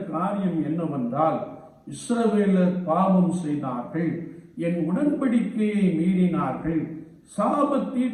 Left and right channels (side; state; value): both; identical; correlation 1.00